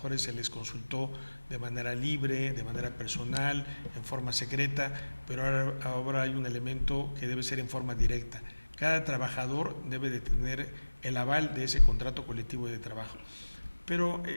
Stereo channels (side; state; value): both; inverted; correlation -1.00